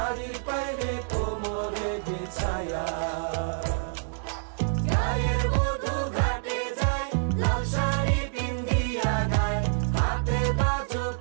পায়ে কোমরে বিছায়া গায়ের বধূ ঘাটে যায় লাল শাড়ি পিন্দিয়া গায় হাতে বাজো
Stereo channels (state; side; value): silent; left; digital silence